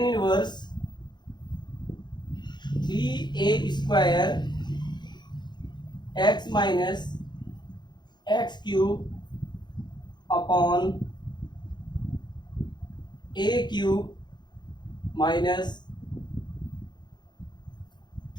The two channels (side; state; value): right; late; 0.21 ms